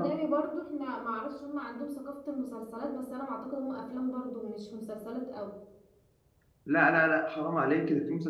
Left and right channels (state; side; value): identical; both; correlation 1.00